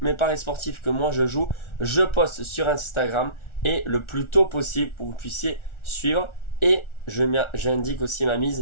mes paris sportifs que moi je joue, je poste sur Instagram et le plus tôt possible pour que vous puissiez suivre. Et j'indique aussi ma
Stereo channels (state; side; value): late; right; 1.4 ms